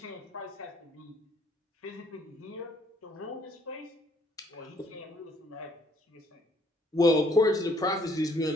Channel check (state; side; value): normal; both; correlation 0.64